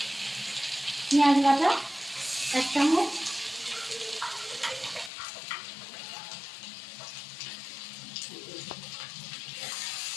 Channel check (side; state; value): right; drops out; at 5.1 s